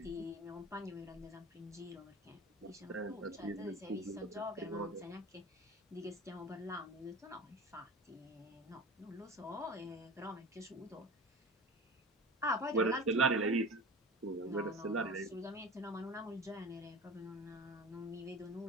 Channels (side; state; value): both; normal; correlation 0.35